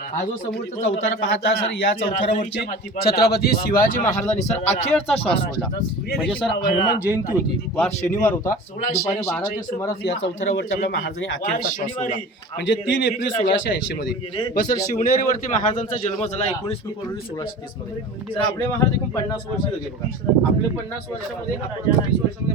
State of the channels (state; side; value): normal; both; correlation 0.37